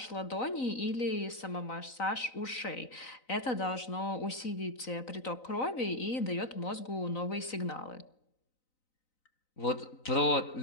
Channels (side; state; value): right; late; 3.9 ms